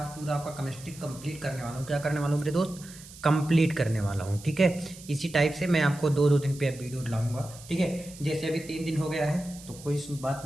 पूरा आपका केमिस्ट्री कंप्लीट करने वाला हूँ। क्या करने वाला हूँ मेरे दोस्त? कंप्लीट करने वाला हूँ। ठीक है, इसी टाइप से मैं आपको दो दिन पे वीडियो लाऊंगा। ठीक है, जैसे अभी 3 दिन हो गया है तो कोई बात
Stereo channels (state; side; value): noise; right; hiss, 18 dB below the sound